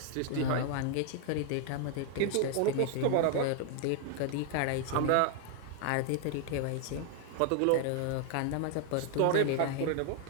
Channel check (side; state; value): both; different; correlation 0.00